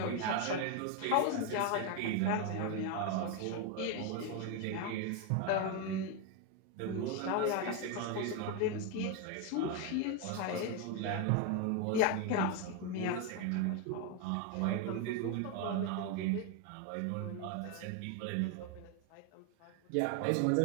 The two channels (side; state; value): both; different; correlation 0.01